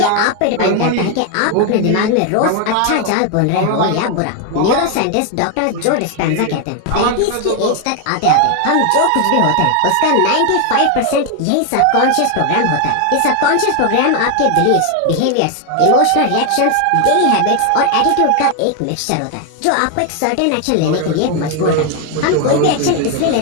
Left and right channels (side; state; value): both; different; correlation 0.01